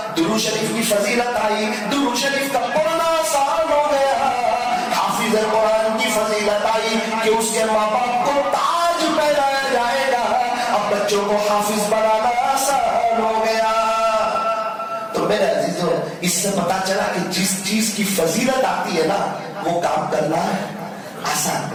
درود شریف کی فضیلت آئی, درود شریف کا پڑھنا آسان ہو گیا. حافظ قرآن کی فضیلت آئی کہ اس کے ماں باپ کو تاج پہنایا جائے گا. اب بچوں کو حافظ بنانا آسان ہو گیا. تو میرے عزیزوں, اس سے پتا چلا کہ جس چیز کی فضیلت آتی ہے نا, وہ کام کرنا آسان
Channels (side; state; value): both; identical; correlation 1.00